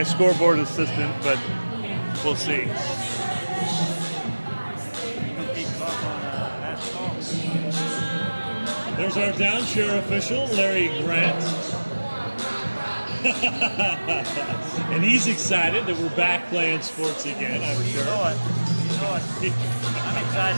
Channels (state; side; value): inverted; both; correlation -1.00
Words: scoreboard assistant, but we'll see. There's our down chair official, Larry Grant. And he's excited that we're back playing sports again, I'm sure. You know it. I'm